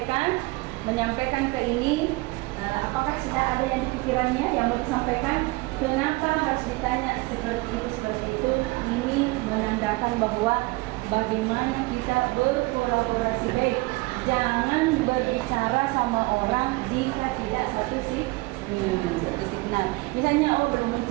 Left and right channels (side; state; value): left; quieter; 23.7 dB